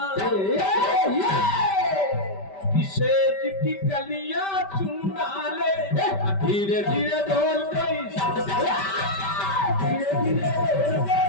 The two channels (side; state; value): right; late; 5.1 ms